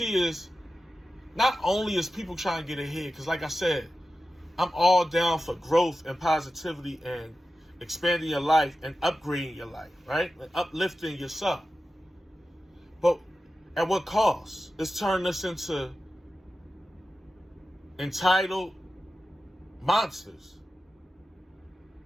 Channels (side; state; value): both; normal; correlation 0.93